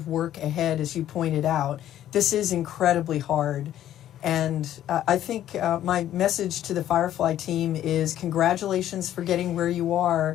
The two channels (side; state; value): right; quieter; 11.9 dB